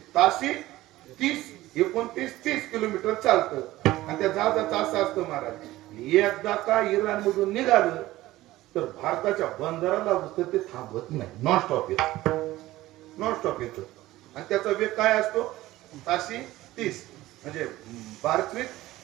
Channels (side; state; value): left; quieter; 16.8 dB